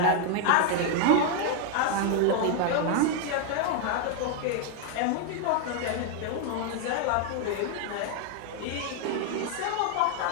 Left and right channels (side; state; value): both; different; correlation 0.00